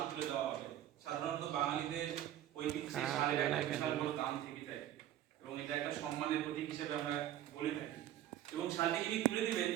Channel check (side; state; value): left; quieter; 12.2 dB